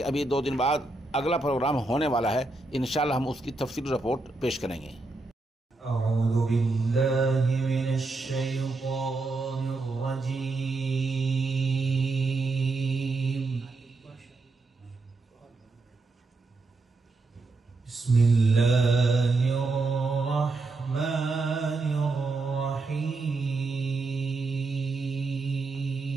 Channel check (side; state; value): left; quieter; 3.4 dB